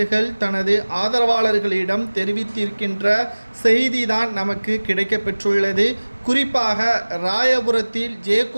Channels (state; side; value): inverted; both; correlation -1.00